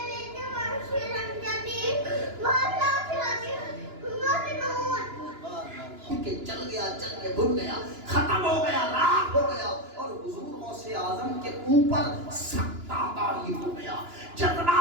चल के भूल गया, खत्म हो गया, राख हो गया और हुजूर गौसे आजम के ऊपर सख्ता तारी हो गया, जतना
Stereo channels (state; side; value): late; left; 2.9 ms